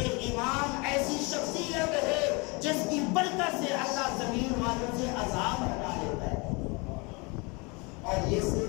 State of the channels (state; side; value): quieter; right; 28.5 dB